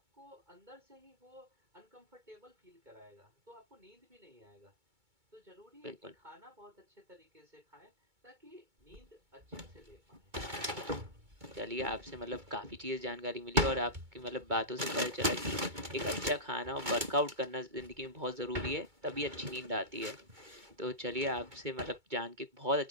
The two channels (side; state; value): left; late; 2.2 ms